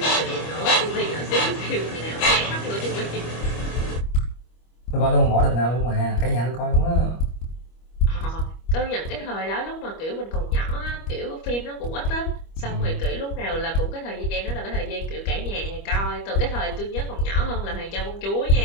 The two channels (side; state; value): right; late; 25 ms